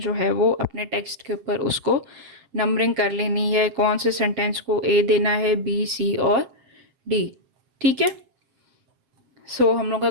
है वो अपने टेक्स्ट के ऊपर उसको नंबरिंग कर लेनी है, कौन से सेंटेंस को ए देना है, बी, सी और डी। ठीक है, सो हम लोग का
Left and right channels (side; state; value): left; late; 7.6 ms